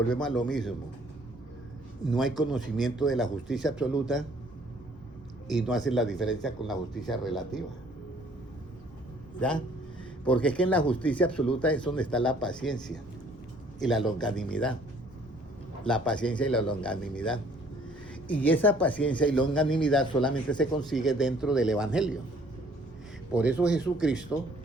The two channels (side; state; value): both; normal; correlation 0.59